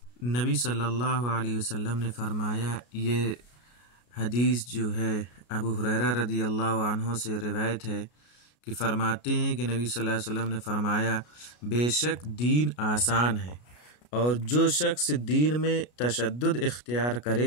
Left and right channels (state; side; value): late; right; 33 ms